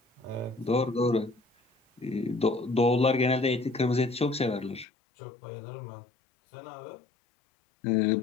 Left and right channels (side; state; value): right; drops out; at 4.9 s